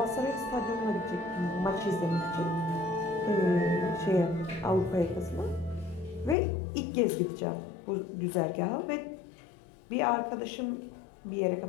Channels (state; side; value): drops out; right; at 6.4 s